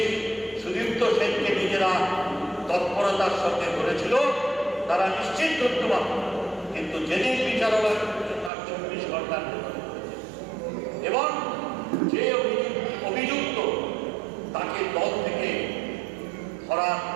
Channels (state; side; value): drops out; left; at 8.5 s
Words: সুদীপ্ত সেনকে নিজেরা তৎপরতার সঙ্গে ধরেছিল তারা নিশ্চিত ধরতে পারত, কিন্তু যেদিন বিচারালয় তার 24 ঘন্টার ভেতরে করেছে এবং যে অভিযুক্ত তাকে দল থেকে ধরার